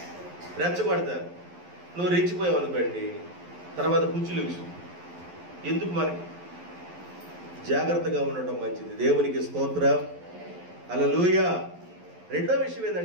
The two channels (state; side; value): late; left; 11 ms